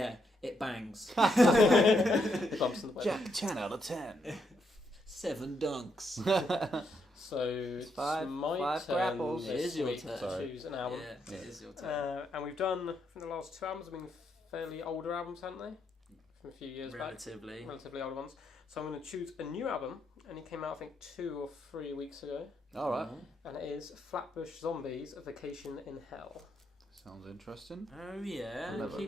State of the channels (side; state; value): both; normal; correlation 0.78